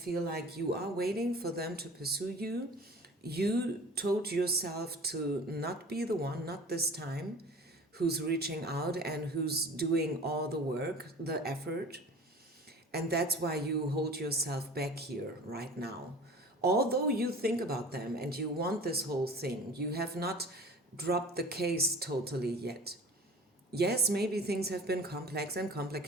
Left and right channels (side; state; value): both; normal; correlation 0.42